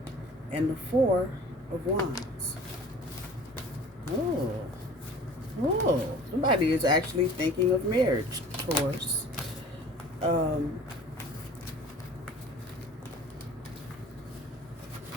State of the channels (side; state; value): both; normal; correlation 0.44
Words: and the Four of Wands. Oh, somebody is actually thinking of marriage, Taurus.